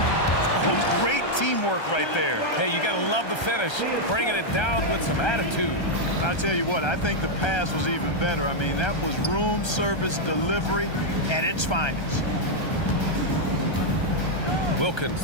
Oh, great teamwork right there. Hey, you got to love the finish, bringing it down with some attitude. I'll tell you what, I think the pass was even better. I mean, that was room service delivery at its finest. Wilkins,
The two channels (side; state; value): right; late; 1.3 ms